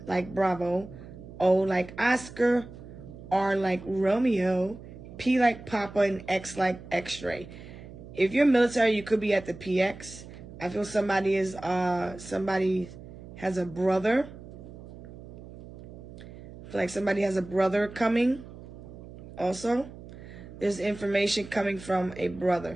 like Bravo, O like Oscar, R like Romeo, P like Papa, and X like X-ray. If you're military, you could be at the PX. I feel somebody has a brother. I feel like somebody has a brother coming. Also, there's information coming from a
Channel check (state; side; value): noise; right; hum, 15 dB below the sound